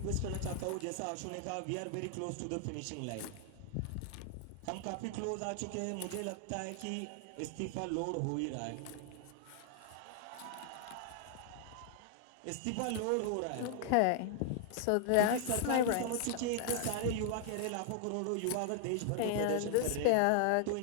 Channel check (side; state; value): both; different; correlation 0.00